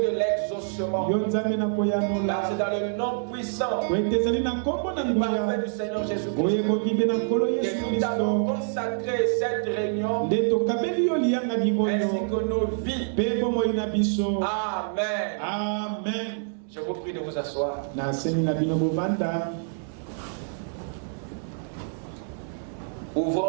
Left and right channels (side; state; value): left; silent; digital silence